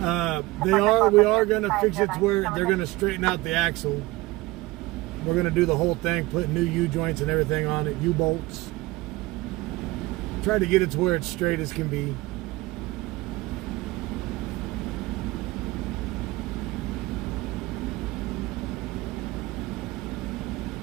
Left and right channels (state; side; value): quieter; left; 20.2 dB